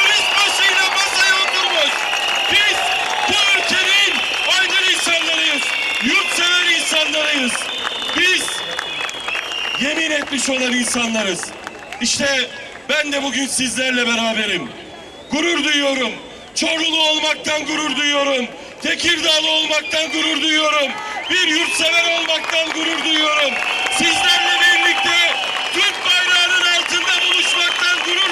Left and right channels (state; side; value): identical; both; correlation 1.00